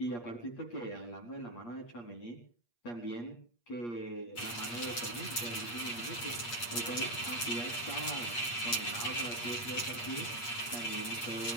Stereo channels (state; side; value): late; right; 8.5 ms